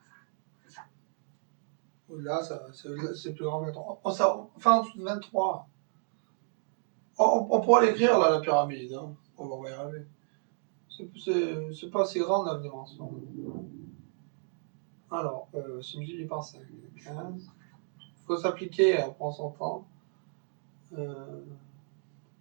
Là, c'est plus grand que 23. Enfin, en dessous de 23. On pourra l'écrire, là, la pyramide. Hein. On va y arriver. C'est pas assez grande, la dimension. Alors, c'est multiplié par 5. 15. Il faut s'appliquer, on prend son temps. Le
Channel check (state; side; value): silent; left; 56 dB below the other